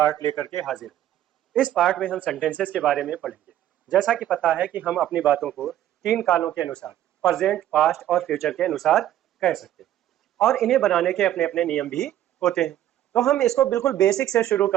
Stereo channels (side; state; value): left; quieter; 12.3 dB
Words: लेकर के हाजिर हैं। इस पार्ट में हम सेंटेंसेस के बारे में पढ़ेंगे। जैसा कि पता है कि हम अपनी बातों को तीन कालों के अनुसार प्रेजेंट, पास्ट और फ्यूचर के अनुसार कह सकते हैं और इन्हें बनाने के अपने अपने नियम भी होते हैं। तो हम इसको बिल्कुल बेसिक से शुरू